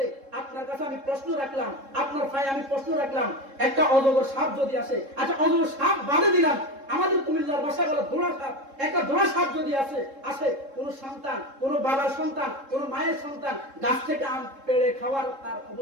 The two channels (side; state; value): left; late; 3.7 ms